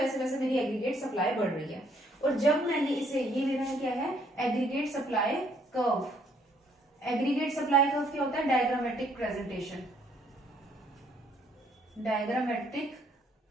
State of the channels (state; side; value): normal; both; correlation 0.66